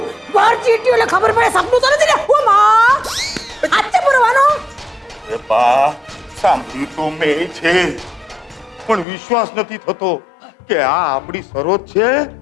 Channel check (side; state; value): right; drops out; at 9.1 s